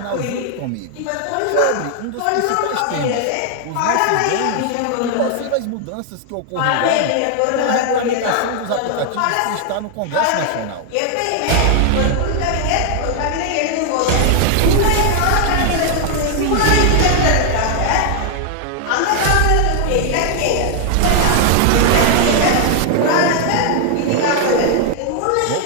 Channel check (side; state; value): both; different; correlation 0.00